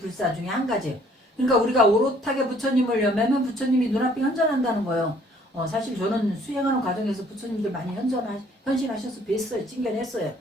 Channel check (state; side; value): normal; both; correlation 0.60